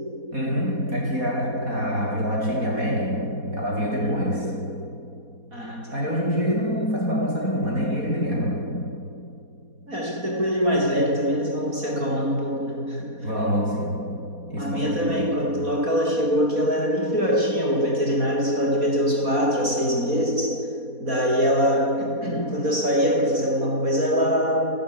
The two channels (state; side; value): late; left; 4.2 ms